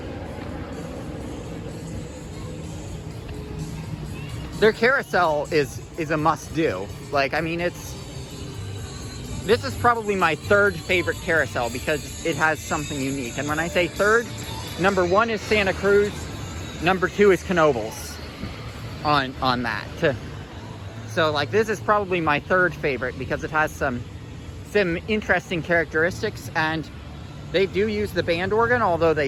Their carousel is a must-do. Like, I mean, this is probably my 3rd favorite carousel because it has something unique. And when I say 3rd, number 1 is Santa Cruz, number 2 is Knoebels on that. So, like, this is probably my 3rd favorite because it has some interesting characteristics, and they do use the band organ, although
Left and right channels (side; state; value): both; identical; correlation 1.00